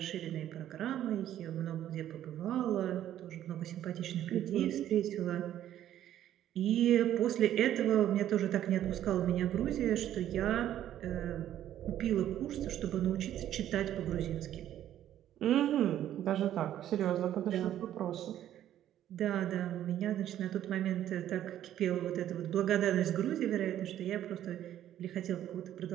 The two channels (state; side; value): quieter; left; 11.7 dB